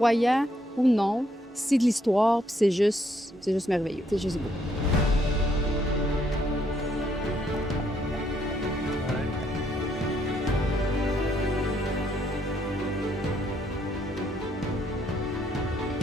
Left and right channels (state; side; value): normal; both; correlation 0.72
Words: ou non, c'est de l'histoire, puis c'est juste merveilleux. C'est juste beau.